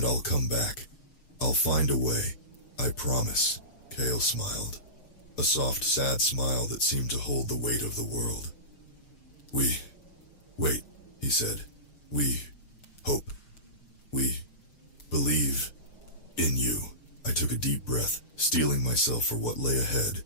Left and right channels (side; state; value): right; late; 6.4 ms